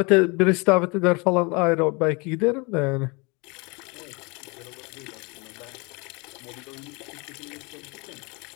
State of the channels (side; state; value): right; quieter; 28.9 dB